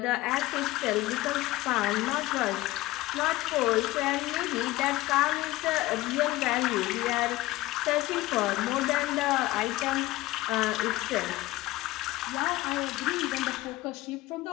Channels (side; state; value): right; quieter; 18.0 dB